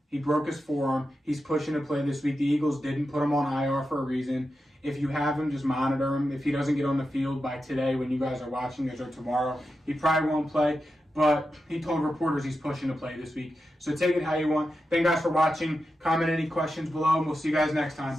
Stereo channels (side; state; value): both; normal; correlation 0.90